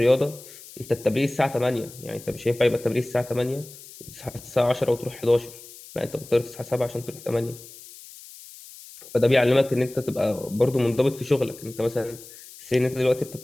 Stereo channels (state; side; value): noise; left; hiss, 18 dB below the sound